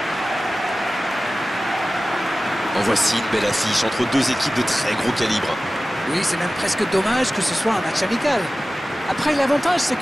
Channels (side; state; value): both; normal; correlation 0.96